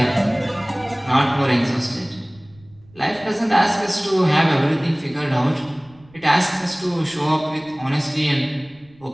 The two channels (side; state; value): right; noise; rumble, 27 dB below the sound